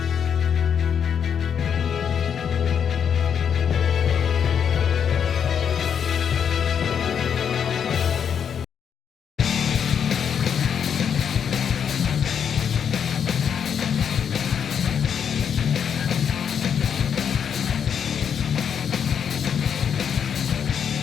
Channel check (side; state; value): right; quieter; 7.7 dB